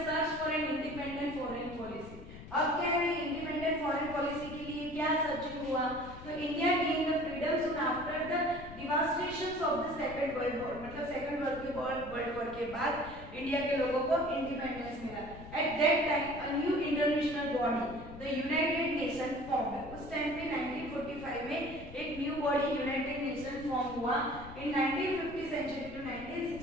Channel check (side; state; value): left; noise; rumble, 14 dB below the sound